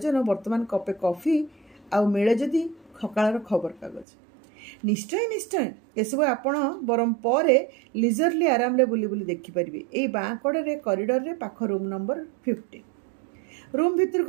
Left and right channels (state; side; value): drops out; left; at 4.0 s